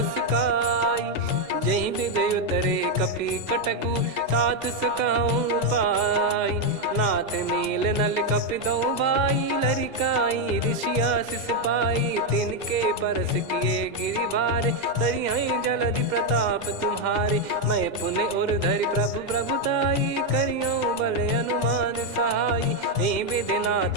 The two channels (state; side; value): late; left; 2.1 ms